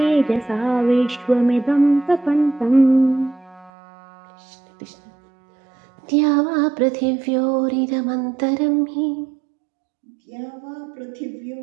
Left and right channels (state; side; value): drops out; left; at 3.7 s